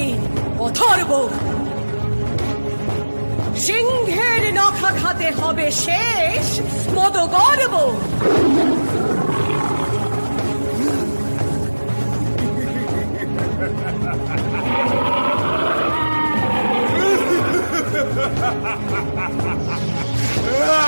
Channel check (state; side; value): inverted; both; correlation -1.00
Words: অথর্ব। সিংহের নখা খাতে হবে শেষ মদ গর্ব।